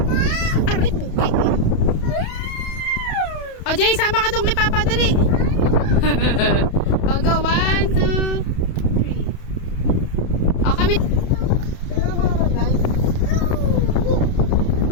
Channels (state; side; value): late; right; 31 ms